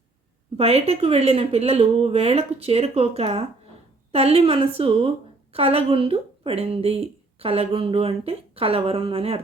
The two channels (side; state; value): left; quieter; 3.4 dB